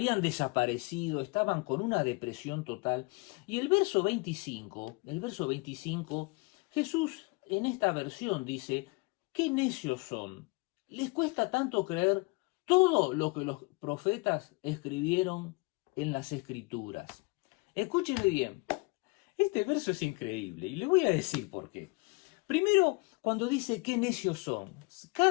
desaparecido, estaban con una depresión total. Y el verso 25, Jesús en esta versión dice, ¡qué necios son! Les cuesta tanto creer todo lo que los profetas escribieron en las Escrituras. Escúcheme bien, este verso es increíble y le voy a decir por qué. Primero, cuando dice qué necios son,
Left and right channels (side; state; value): right; quieter; 27.1 dB